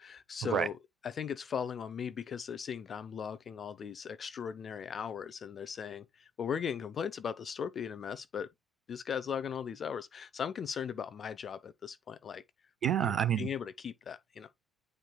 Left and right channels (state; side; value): normal; both; correlation 0.62